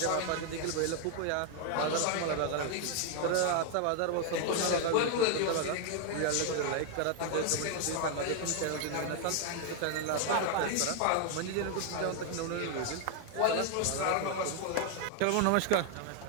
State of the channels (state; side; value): different; both; correlation 0.00